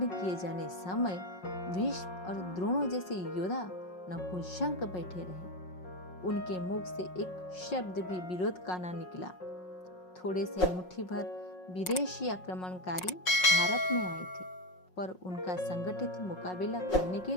किए जाने समय भीष्म और द्रोणों जैसे योद्धा नपुंसक बैठे रहे। उनके मुख से एक शब्द भी विरोध का ना निकला। थोड़े से मुट्ठी भर विदेशी आक्रमणकारी भारत में आए थे, पर उनका संगठित मुकाबला करने के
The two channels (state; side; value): late; right; 5.5 ms